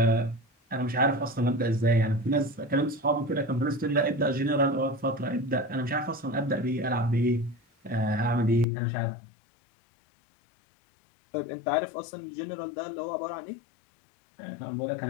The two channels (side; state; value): right; drops out; at 8.7 s